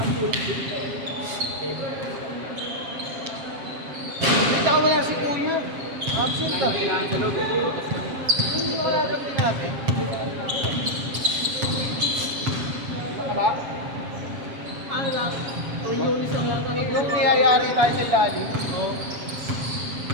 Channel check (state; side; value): late; left; 7.4 ms